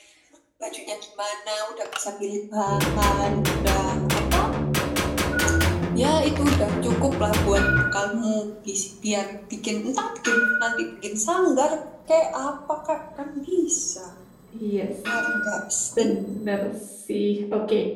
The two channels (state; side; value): identical; both; correlation 1.00